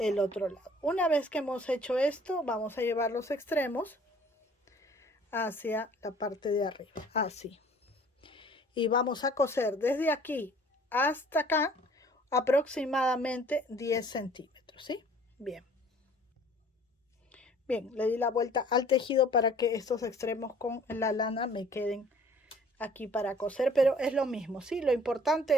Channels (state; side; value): normal; both; correlation 0.54